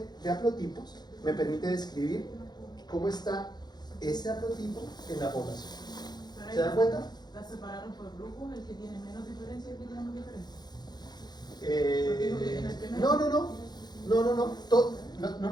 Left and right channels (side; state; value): right; late; 0.20 ms